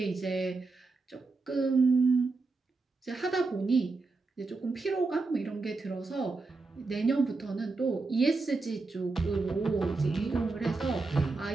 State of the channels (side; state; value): left; quieter; 3.8 dB